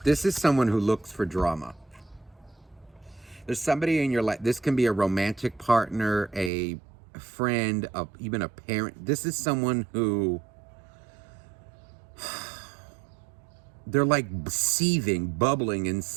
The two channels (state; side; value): drops out; left; at 6.5 s